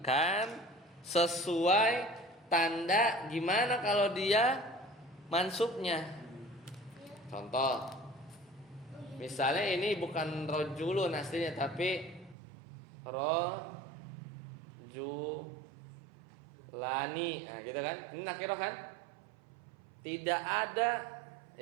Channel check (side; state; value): left; drops out; at 12.4 s